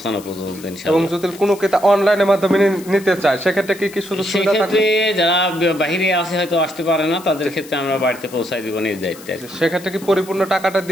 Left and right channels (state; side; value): noise; left; hiss, 19 dB below the sound